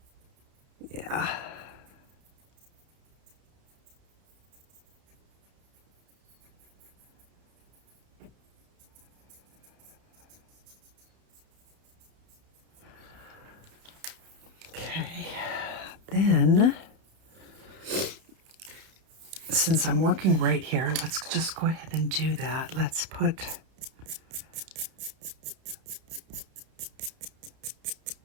Yeah. Okay. Then, since I'm working right here, let's just go ahead and do that. Let's put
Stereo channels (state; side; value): late; left; 31 ms